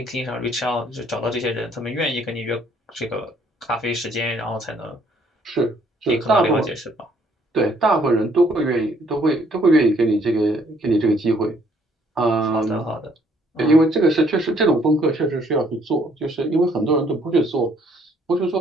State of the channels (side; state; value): both; normal; correlation 0.64